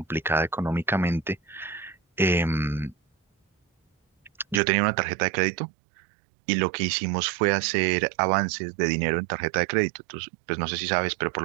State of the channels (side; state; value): left; drops out; at 4.6 s